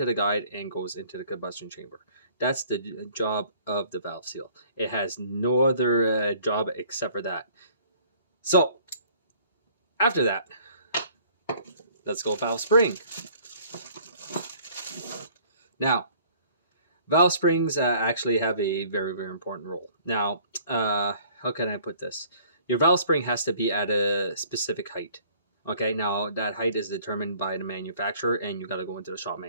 the guide and goes into the combustion chamber. That's the job of the valve seal. It has no other job except for that. So, after that, let's go valve spring. Now, valve springs actually have a very, very important role. Now, how can I put this? Your valve spring has to be at a specific height. Okay, now that height is determined by the manufacturer, and you got to go into the shop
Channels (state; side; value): inverted; both; correlation -0.55